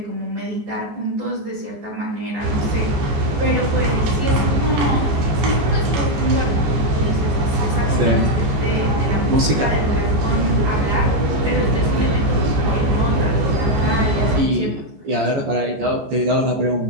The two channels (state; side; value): late; left; 14 ms